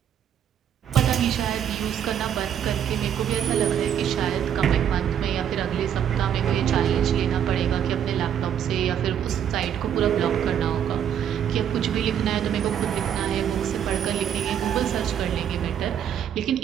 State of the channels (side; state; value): left; quieter; 9.2 dB